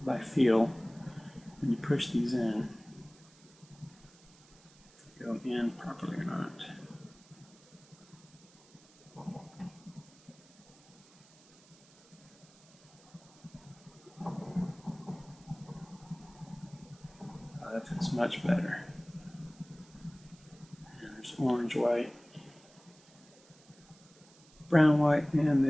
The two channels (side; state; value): right; noise; hiss, 26 dB below the sound